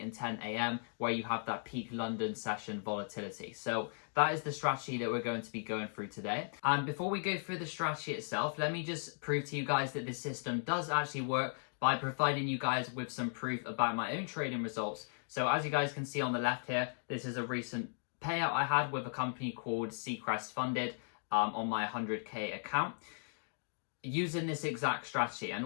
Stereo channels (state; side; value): silent; right; digital silence